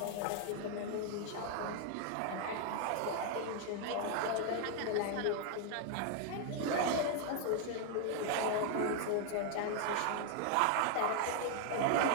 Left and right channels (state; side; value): different; both; correlation 0.00